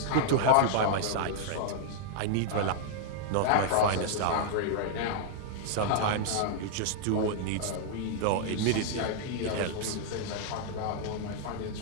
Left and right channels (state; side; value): different; both; correlation -0.01